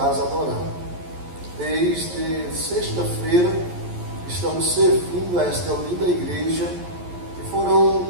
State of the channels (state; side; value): late; left; 11 ms